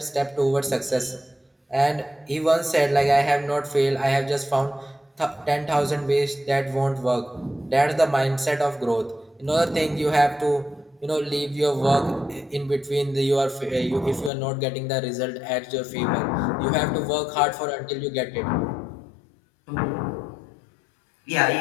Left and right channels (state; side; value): drops out; right; at 14.3 s